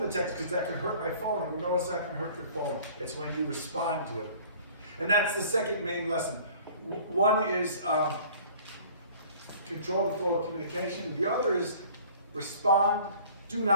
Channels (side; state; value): both; inverted; correlation -0.50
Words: the text because that could hurt my phone. And no, it's not going to hurt your phone. It's when you respond to it. And that's the second main lesson. One is control the flow of communication. The other is respond, do